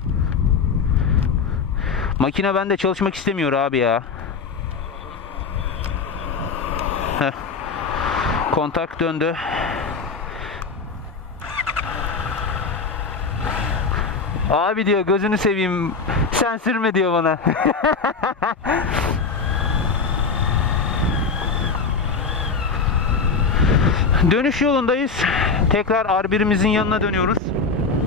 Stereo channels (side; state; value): right; quieter; 4.9 dB